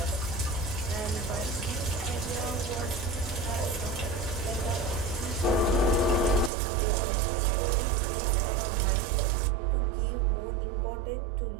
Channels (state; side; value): drops out; left; at 6.5 s